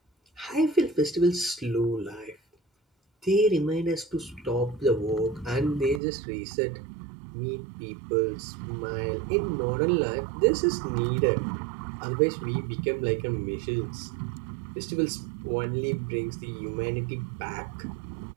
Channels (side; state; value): left; drops out; at 6.0 s